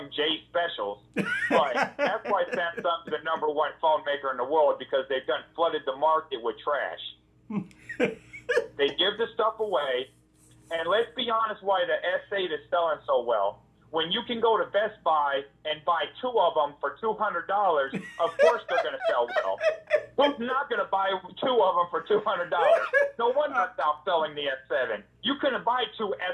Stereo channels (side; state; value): both; identical; correlation 1.00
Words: J specials. But that's why Samsung's the #1 phone maker in the world, because they've done flooded the market with trash. They give the stuff away, and let's be honest, why the S8 is selling so well. When you can go to Best Buy and buy 2 of them for $200, of course they're going to sell well. Who's not going to buy 2 of them for $200? No wonder it's outselling the S7. You couldn't buy 2